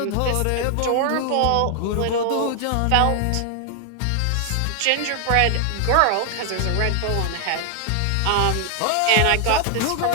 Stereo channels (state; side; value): different; both; correlation 0.00